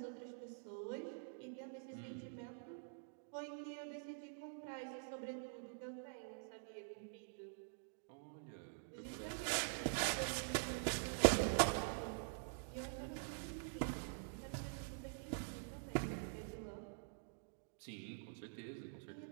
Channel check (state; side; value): silent; left; digital silence